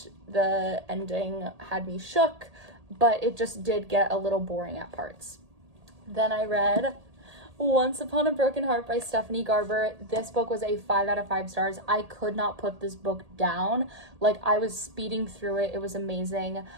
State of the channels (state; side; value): late; left; 1.8 ms